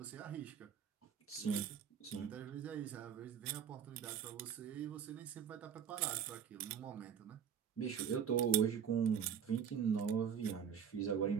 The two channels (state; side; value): quieter; left; 8.0 dB